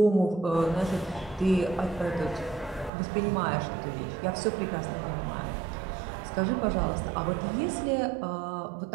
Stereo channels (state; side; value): drops out; left; at 2.9 s